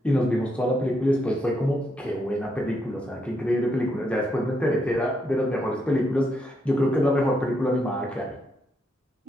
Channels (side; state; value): both; normal; correlation 0.78